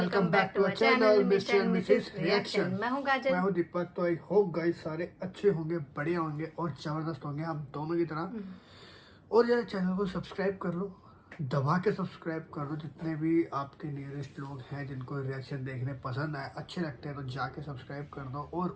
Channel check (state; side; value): identical; both; correlation 1.00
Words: back to our channel mister and missus reaction. मैं हूँ काजल। मैं हूँ दीपक। तो आई होप गाइस सारे अच्छे होंगे, बढ़िया होंगे और जबरदस्त होंगे हम दोनों की तरह। और यार चैनल को सब्सक्राइब कर लो, दबा के सब्सक्राइब कर लो। जितने भी आपके नियरेस्ट लोग हैं जिनको रिएक्शन देखने पसंद आए, अच्छे लगते हैं, तो जाके सब्सक्राइब कर दो और